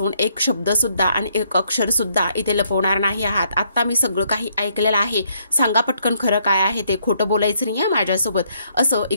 एक शब्द सुद्धा आणि एक अक्षर सुद्धा इथे लपवणार नाही आहात। आता मी सगळं काही ऐकलेलं आहे, सांगा पटकन खरं काय आहे ते, खोटं बोलायचं नाहीये माझ्यासोबत असं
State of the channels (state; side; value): inverted; both; correlation -0.71